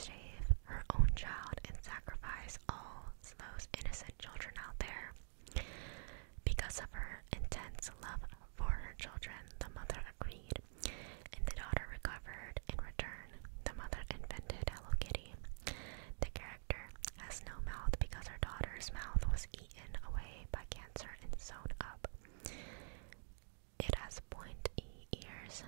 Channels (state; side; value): silent; left; digital silence